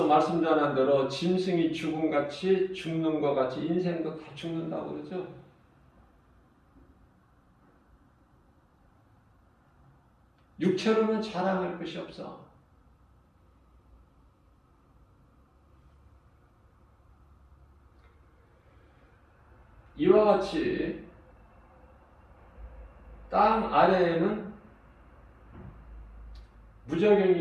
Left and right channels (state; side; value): identical; both; correlation 1.00